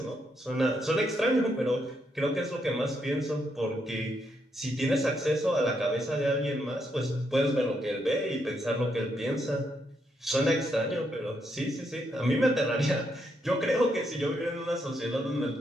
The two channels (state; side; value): normal; both; correlation 0.78